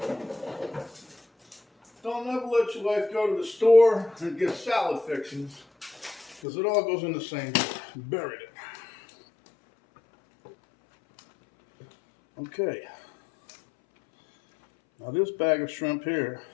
Don't ever let your wife go to the store and get salad fixings, because it all goes in the same. Buried it. Okay. Now this bag of shrimp here,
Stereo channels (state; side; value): drops out; right; at 6.4 s